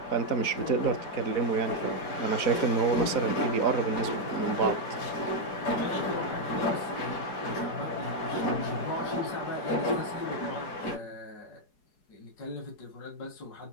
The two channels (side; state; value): right; late; 4.8 ms